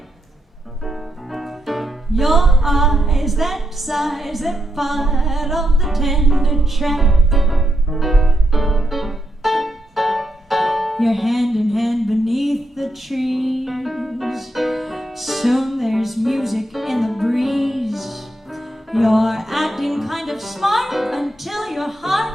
Your eyes, that size, that part of the tender trap. You're hand in hand beneath the trees. Soon there's music in the breeze. You're acting kind of smart until your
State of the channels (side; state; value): both; normal; correlation 0.82